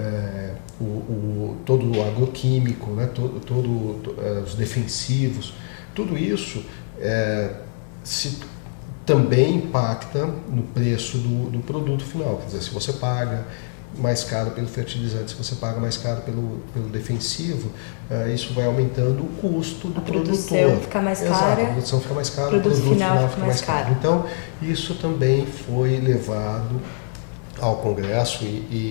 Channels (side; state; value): right; silent; 63 dB below the other